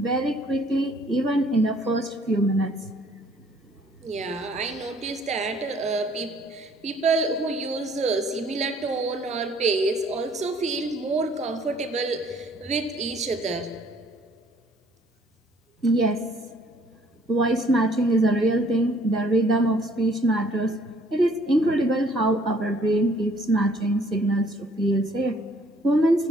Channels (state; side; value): normal; both; correlation 0.60